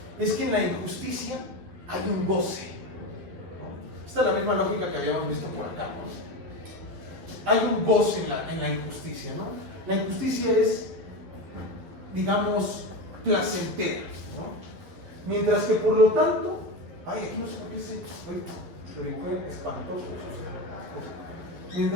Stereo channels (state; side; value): late; left; 12 ms